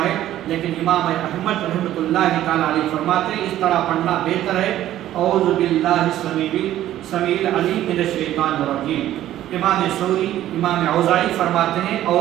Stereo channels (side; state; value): left; quieter; 13.1 dB